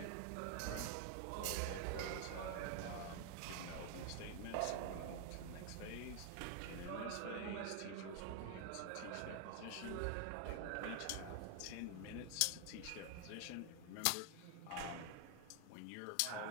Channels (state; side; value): different; both; correlation 0.00